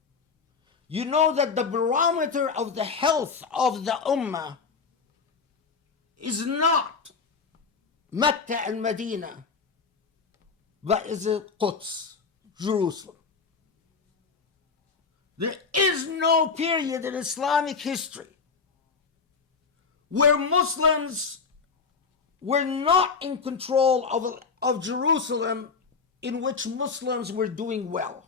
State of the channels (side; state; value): right; quieter; 5.1 dB